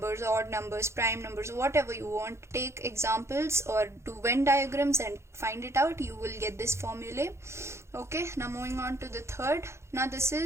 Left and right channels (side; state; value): left; late; 0.13 ms